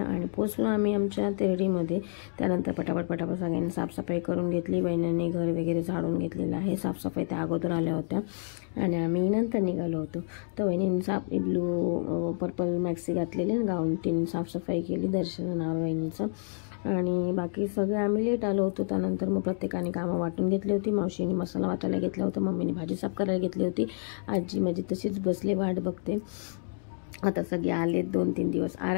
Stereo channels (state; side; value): silent; right; digital silence